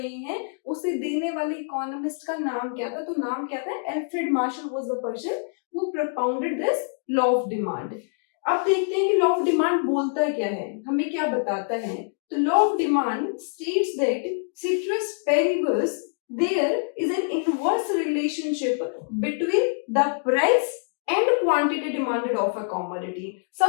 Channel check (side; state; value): right; silent; digital silence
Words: हैं उसे देने वाले इकोनॉमिस्ट का नाम क्या था. तो नाम क्या था? Alfred Marshall was the person who propounded this law of demand. अब देखते हैं कि लॉ ऑफ डिमांड बोलता क्या है, हमें क्या बताता है. तो law of demand states that ceteris paribus there is an inverse relationship between the price and quantity demanded of a commodity.